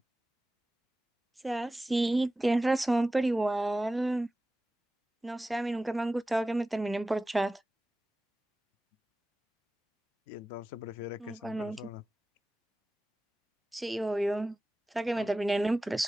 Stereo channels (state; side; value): normal; both; correlation 0.96